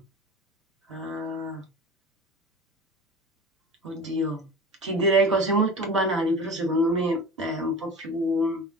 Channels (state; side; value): normal; both; correlation 0.35